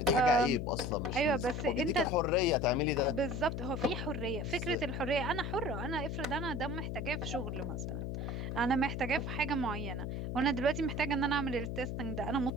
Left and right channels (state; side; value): noise; left; hum, 3 dB below the sound